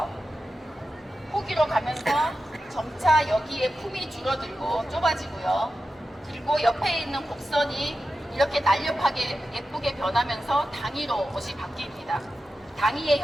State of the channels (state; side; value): normal; both; correlation 0.92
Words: 후기로 가면서 점차 여기에 품이 줄어들고 좁아지고요. 그리고 옆에 있는 곡선이 이렇게 날렵하게 예쁘게 변하면서 당이로 옷이 바뀝니다. 당이의